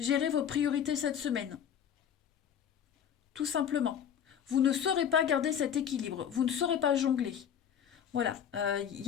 vos priorités cette semaine, tout simplement. Vous ne saurez pas garder cet équilibre, vous ne saurez pas jongler. Voilà, il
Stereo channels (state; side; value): quieter; right; 8.7 dB